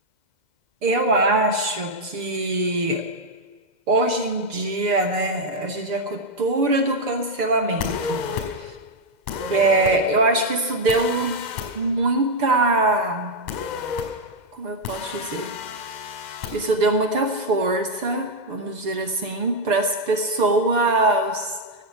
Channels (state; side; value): late; left; 2.0 ms